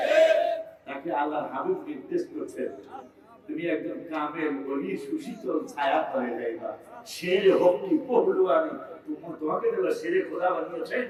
তাকে আল্লাহর হাবিব নির্দেশ করছেন, তুমি একজন কামেল ওলি, সুশীতল ছায়া তলে যাইবা। শের হকি পহলওয়ানি, তোমাকে দেওয়া শেরে খোদা বানিয়েছেন,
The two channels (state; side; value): identical; both; correlation 1.00